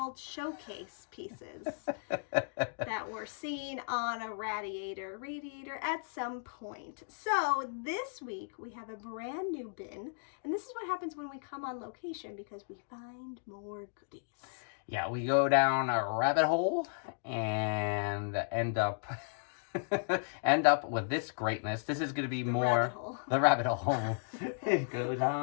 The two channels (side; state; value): right; silent; digital silence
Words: Showcase pieces that were seen on a radiator at some point. So, this week, we have a brand new bin, and this is what happens when we come on location because we find more goodies. Yeah, we go down a rabbit hole and end up with this greatness. This is going to be the rabbit hole. It goes